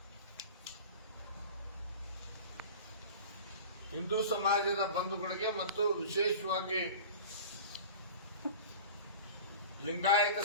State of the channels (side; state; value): both; inverted; correlation -0.37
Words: ಹಿಂದೂ ಸಮಾಜದ ಬಂಧುಗಳಿಗೆ ಮತ್ತು ವಿಶೇಷವಾಗಿ ಲಿಂಗಾಯತ